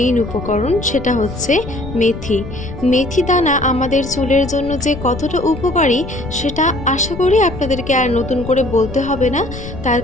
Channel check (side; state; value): left; noise; rumble, 10 dB below the sound